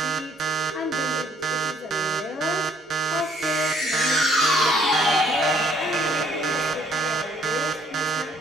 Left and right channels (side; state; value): both; normal; correlation 0.64